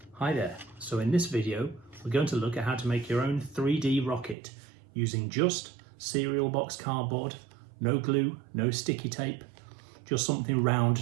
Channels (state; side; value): drops out; left; at 4.4 s